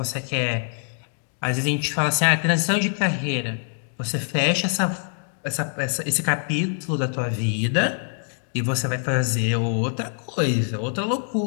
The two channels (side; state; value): right; silent; 56 dB below the other